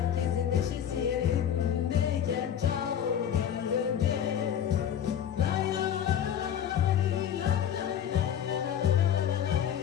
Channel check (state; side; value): quieter; right; 9.4 dB